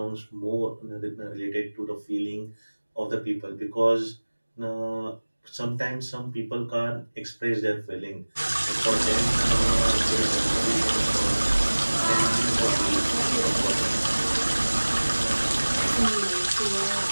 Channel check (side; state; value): both; inverted; correlation -1.00